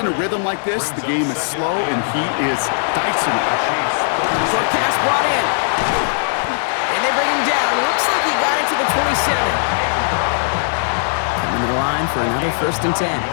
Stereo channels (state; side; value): silent; right; 56 dB below the other